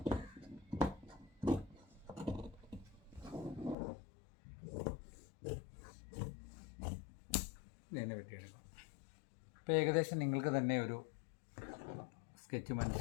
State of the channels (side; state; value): right; drops out; at 3.8 s